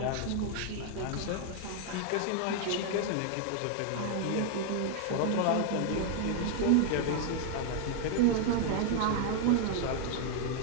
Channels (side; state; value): both; different; correlation 0.00